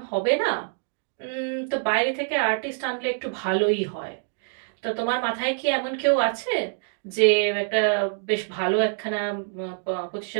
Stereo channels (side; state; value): left; silent; digital silence